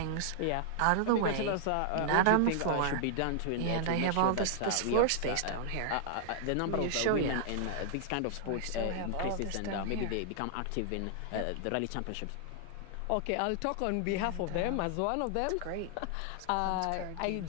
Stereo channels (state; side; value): different; both; correlation 0.00